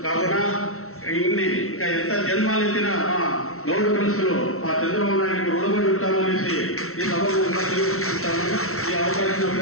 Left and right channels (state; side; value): late; right; 0.63 ms